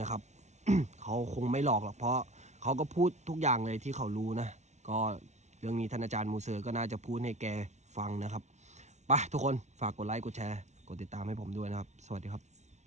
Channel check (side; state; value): left; late; 0.33 ms